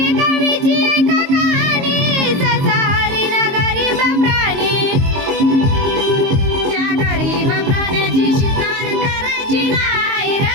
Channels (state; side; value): late; left; 22 ms